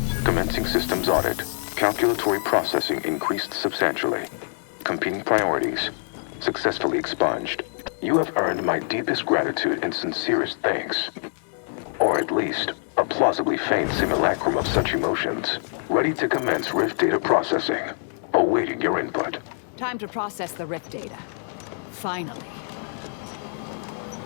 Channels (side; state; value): right; silent; 62 dB below the other